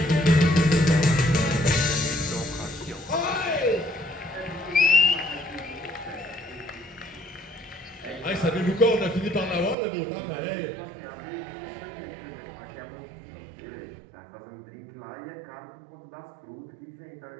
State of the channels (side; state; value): left; drops out; at 9.8 s